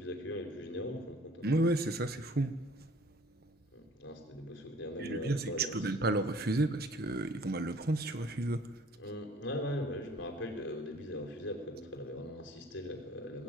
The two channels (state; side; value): normal; both; correlation 0.53